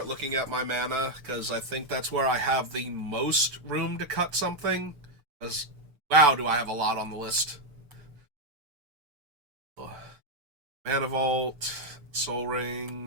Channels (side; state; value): left; late; 6.8 ms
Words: looking at my mana, because I think that's where I have the most room to cut something. Because, wow, do I have a lot on the list. Mana Vault, Soul